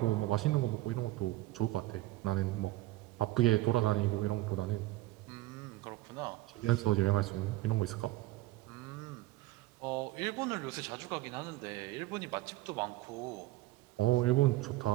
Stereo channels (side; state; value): left; quieter; 17.7 dB